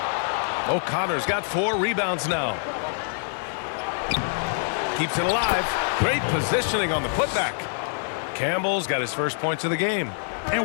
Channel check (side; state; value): right; silent; digital silence